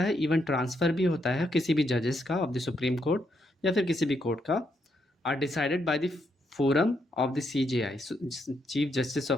इवन ट्रांसफ़र भी होता है किसी भी जजेस का ऑफ द सुप्रीम कोर्ट या फिर किसी भी कोर्ट का, are decided by the forum of the CJI, chief justice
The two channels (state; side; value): normal; both; correlation 0.78